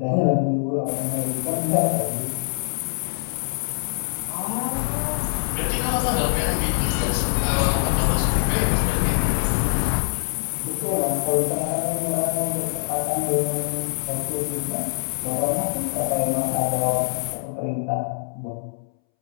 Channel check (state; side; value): silent; right; 63 dB below the other